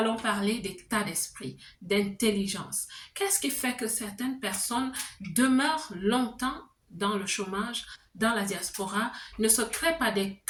parler d'état d'esprit, d'intelligence. Qu'est-ce qui fait que certaines personnes demeurent longtemps dans le chômage, dans la diaspora, ne se créent pas des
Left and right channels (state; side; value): identical; both; correlation 1.00